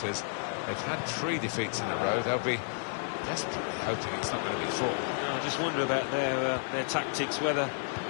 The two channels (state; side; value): silent; right; digital silence